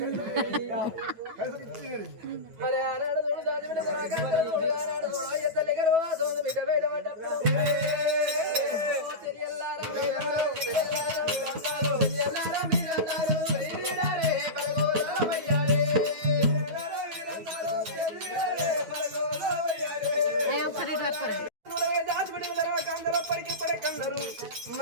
మరి ఆనాడు చూడు దాని మీద ఆనాడు చూడు ఎత్తలి గర్వాసం బిడ్డ బయట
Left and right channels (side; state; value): left; late; 9.2 ms